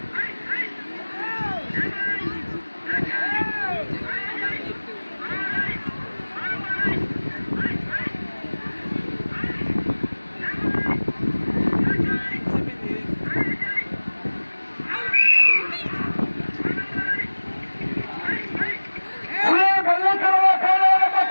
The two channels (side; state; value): both; inverted; correlation -1.00